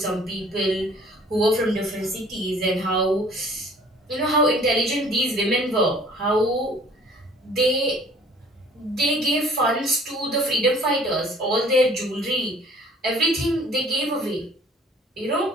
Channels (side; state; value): both; normal; correlation 0.53